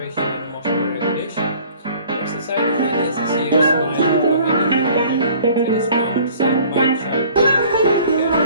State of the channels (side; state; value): both; inverted; correlation -0.52